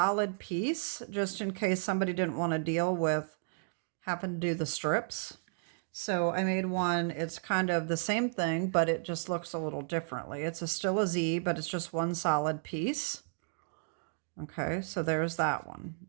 piece just in case somebody didn't want to deal with having to do the strips. So I made one, it's kind of the same thing, but it just looks a little differently. It's still a Z, but it's just one solid piece. Okay, so there's that one.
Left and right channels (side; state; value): left; silent; digital silence